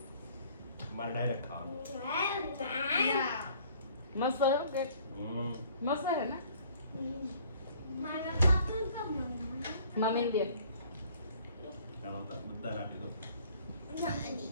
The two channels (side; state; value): both; inverted; correlation -0.56